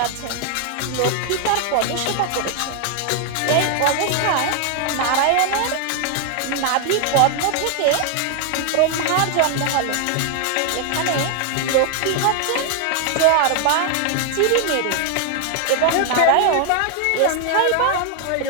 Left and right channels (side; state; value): both; different; correlation 0.00